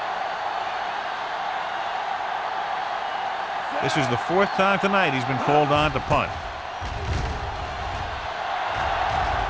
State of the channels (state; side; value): identical; both; correlation 1.00